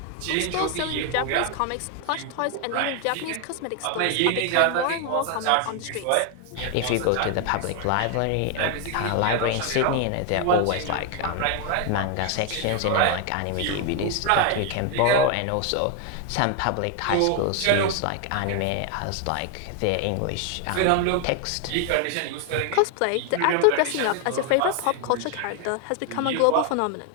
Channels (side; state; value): both; different; correlation 0.00